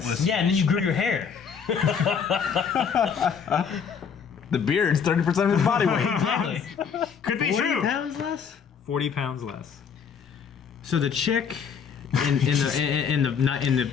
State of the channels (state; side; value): quieter; right; 6.7 dB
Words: Yeah, and then you grew your hair. The beard's 30% of his body weight. Exactly. Could be 40 true. pounds less? 40 pounds less. So the chick in